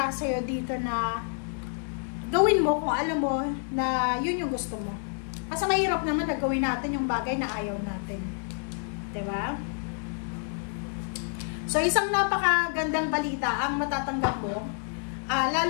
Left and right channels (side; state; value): right; silent; 59 dB below the other